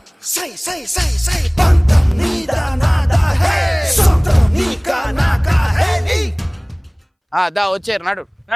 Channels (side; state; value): both; identical; correlation 1.00